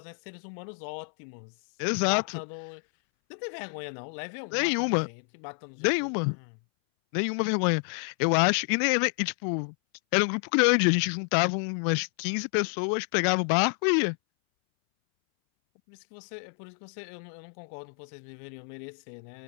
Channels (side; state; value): right; silent; 59 dB below the other